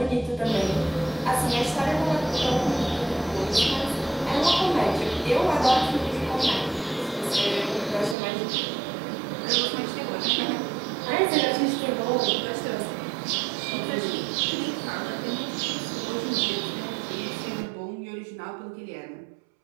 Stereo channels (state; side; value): drops out; left; at 8.2 s